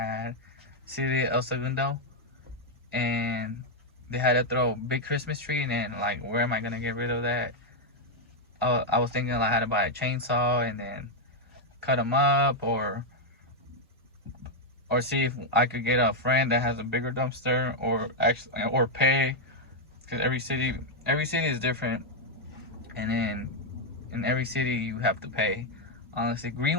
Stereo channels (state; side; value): normal; both; correlation 0.00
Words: City El Segundo, and they had to throw a big Christmas tree, and then like, where am I gonna get rid of that? I was thinking I had to buy a chainsaw and then cut them up, or see if I could get a friend that has a bigger dumpster, or pay because every city is different, and then in every city you have to pay. Honestly,